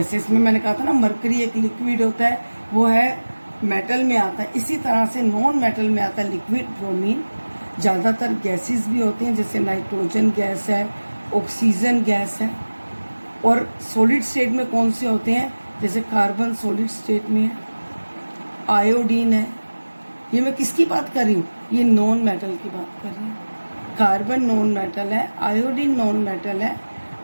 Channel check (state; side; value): inverted; both; correlation -1.00